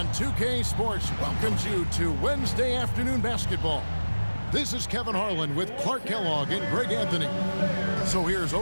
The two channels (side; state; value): both; inverted; correlation -1.00